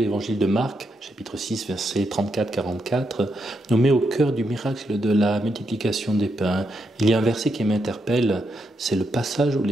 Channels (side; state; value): both; normal; correlation 0.81